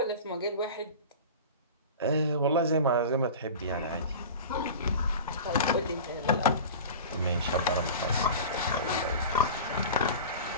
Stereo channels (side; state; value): both; inverted; correlation -0.34